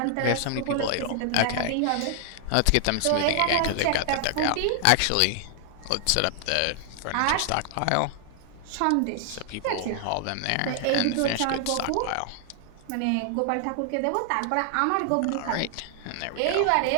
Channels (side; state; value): both; different; correlation 0.00